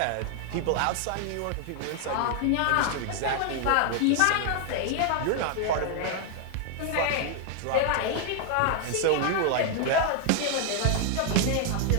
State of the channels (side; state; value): both; different; correlation 0.00